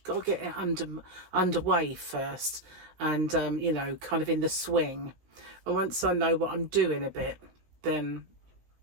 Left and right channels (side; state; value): left; late; 16 ms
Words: Got to get it underway first, and kind of in the swing. And once I know what I'm doing a bit, then